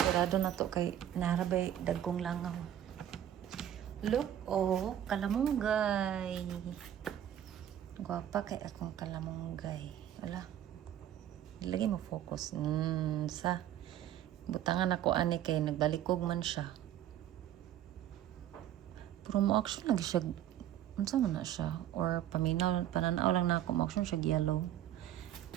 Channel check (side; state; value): left; quieter; 11.3 dB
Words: na to kay narabay dagkong langaw. Look, oh, kalamunggay. Gwapa kay akong kalamunggay. Wala. Lagi mo focus. Sa butangan ako ani kay nagbalikog man siya. Pero mo action lagi siya. Unsa man na siya? Or paminaw, pananaw lang na ako mo action siya yellow.